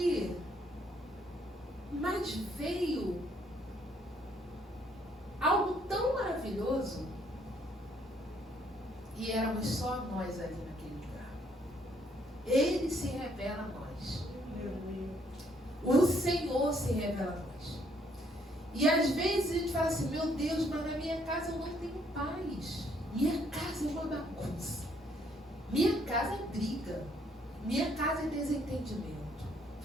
mas veio algo tão maravilhoso. E éramos só nós ali naquele lugar. Ele se revela a nós. O Senhor se revela a nós. E às vezes a gente fala assim, meu Deus, mas na minha casa eu não tenho paz. Minha casa é uma bagunça. Minha casa é briga. Minha casa é desentendimento.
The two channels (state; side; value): normal; both; correlation 0.68